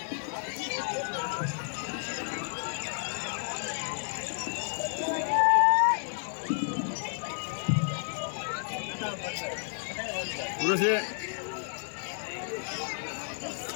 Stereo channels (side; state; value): right; silent; 57 dB below the other